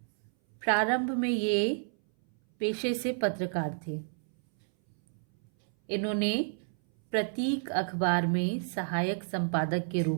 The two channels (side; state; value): left; silent; 58 dB below the other